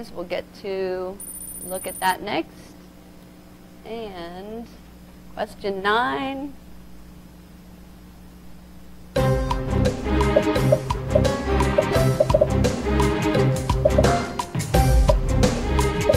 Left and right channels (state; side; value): identical; both; correlation 1.00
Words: We'll get to look at that next. And question 9. All